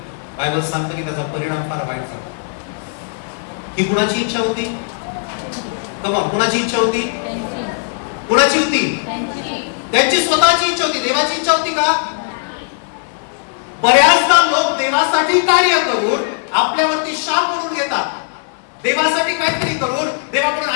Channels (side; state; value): right; silent; digital silence